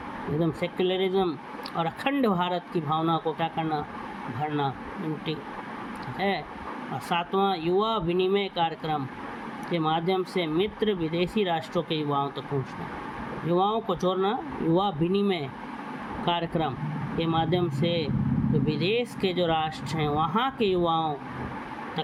एकदम सेक्युलरिज्म और अखंड भारत की भावना को क्या करना, भरना, यूनिटी है। और सातवां युवा विनिमय कार्यक्रम के माध्यम से मित्र विदेशी राष्ट्रों के युवाओं तक पहुंचना, युवाओं को जोड़ना, युवा विनिमय कार्यक्रम के माध्यम से जो विदेश के जो राष्ट्र हैं वहाँ के युवाओं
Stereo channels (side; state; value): both; identical; correlation 1.00